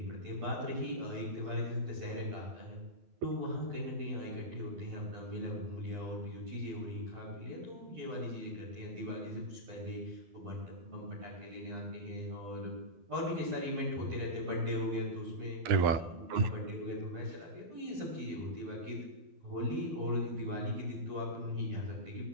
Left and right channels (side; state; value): left; late; 12 ms